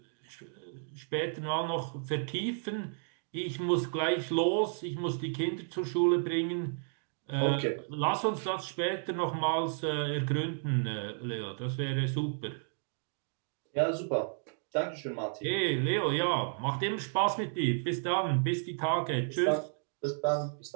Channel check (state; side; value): silent; left; 56 dB below the other